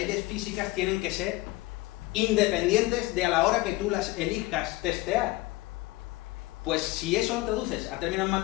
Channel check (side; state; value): right; quieter; 19.9 dB